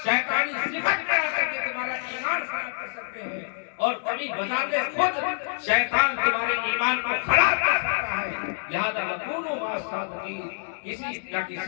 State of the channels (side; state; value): right; silent; digital silence